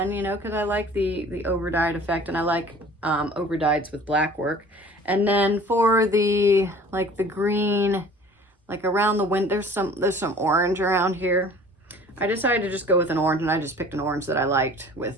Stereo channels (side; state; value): both; normal; correlation 0.47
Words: you know, because I like the over-dyed effect, and I like over-dyeds with black work. And then for the, like the green, like around the wind, there's some orange around here. I decided to just go with an orange, and I just picked an orange that I liked with